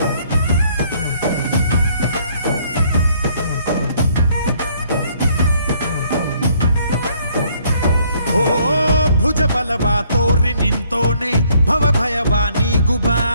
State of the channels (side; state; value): both; inverted; correlation -0.65